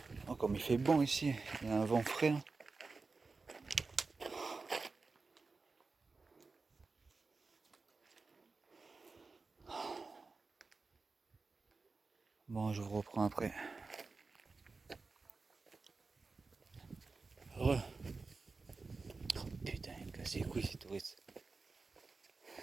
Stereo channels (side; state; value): left; quieter; 4.1 dB